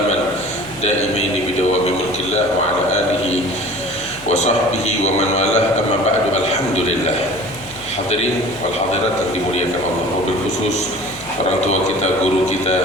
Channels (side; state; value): left; noise; hum, 20 dB below the sound